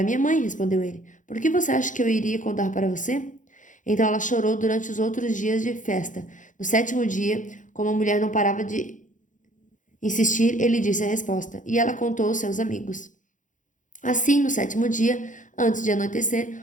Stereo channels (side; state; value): right; late; 0.37 ms